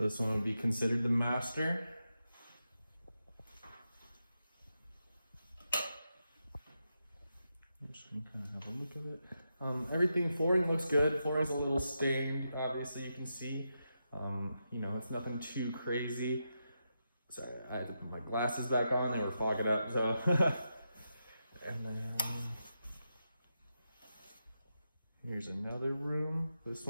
this one would be considered the master. I'm just gonna kind of have a look at it. Everything, flooring looks good. Flooring's a little stained, obviously you can see. You know, it's nothing too crazy. Sorry, I had to put my glasses back on, they were fogging up, so. And then, here's another room. This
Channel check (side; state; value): both; inverted; correlation -0.86